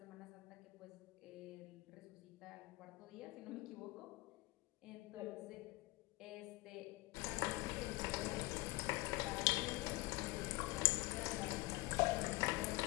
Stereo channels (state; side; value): quieter; right; 21.5 dB